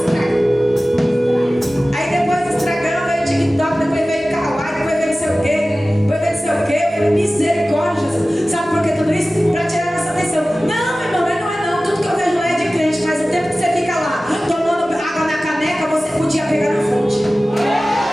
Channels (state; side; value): normal; both; correlation 0.96